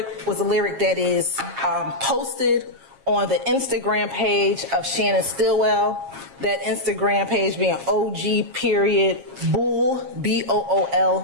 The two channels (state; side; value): late; left; 7.5 ms